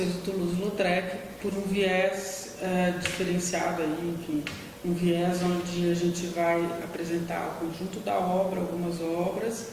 o Toulouse-Lautrec por um viés diferenciado aí, enfim, um viés onde a gente vai apresentar o conjunto da obra, algumas obras,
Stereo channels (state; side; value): identical; both; correlation 1.00